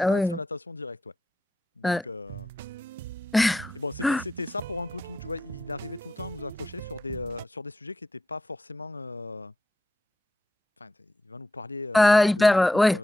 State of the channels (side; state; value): both; normal; correlation 0.84